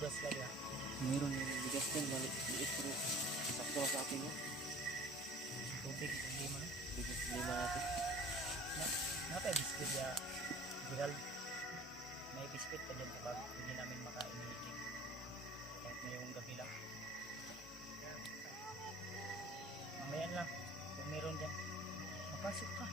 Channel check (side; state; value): both; normal; correlation 0.45